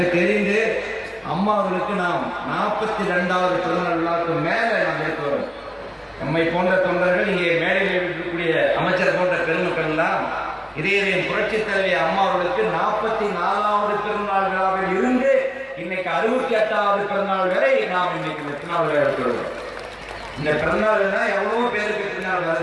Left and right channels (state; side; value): identical; both; correlation 1.00